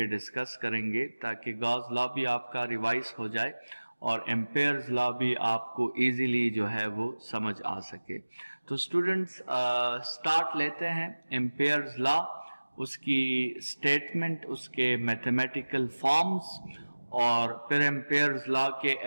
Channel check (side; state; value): both; inverted; correlation -1.00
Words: डिस्कस करेंगे ताकि गॉस लॉ भी आपका रिवाइज हो जाए और एम्पेयर्स लॉ भी आपको इजीली जो है वो समझ आ सके। तो स्टूडेंट्स स्टार्ट लेते हैं एम्पेयर्स लॉ, उसकी स्टेटमेंट, उसके मैथमेटिकल फॉर्म्स और फिर एम्पेयर्स लॉ के